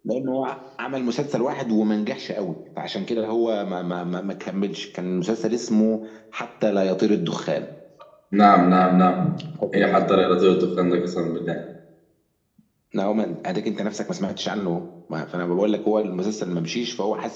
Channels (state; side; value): identical; both; correlation 1.00